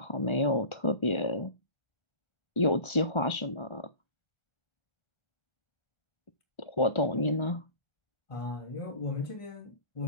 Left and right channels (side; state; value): right; late; 1.3 ms